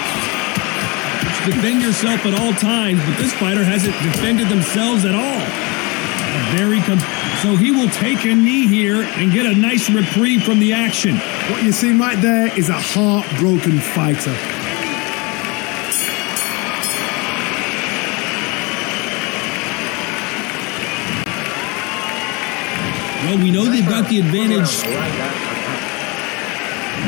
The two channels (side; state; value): right; quieter; 27.8 dB